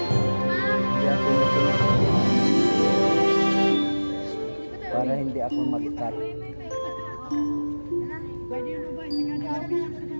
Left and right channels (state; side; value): inverted; both; correlation -1.00